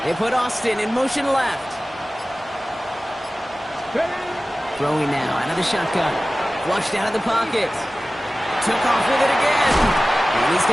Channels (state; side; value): normal; both; correlation 0.97